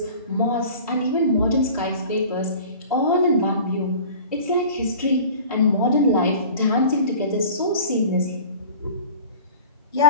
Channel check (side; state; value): both; inverted; correlation -0.42